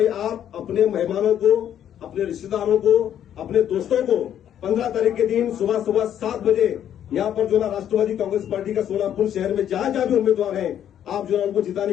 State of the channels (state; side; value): quieter; right; 10.1 dB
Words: आप अपने मेहमानों को, अपने रिश्तेदारों को, अपने दोस्तों को 15 तारीख के दिन सुबह 7 बजे यहाँ पर जो ना राष्ट्रवादी कांग्रेस पार्टी का सोलापुर शहर में जहां जहां भी उम्मीदवार हैं, आप जो है उनको जिताने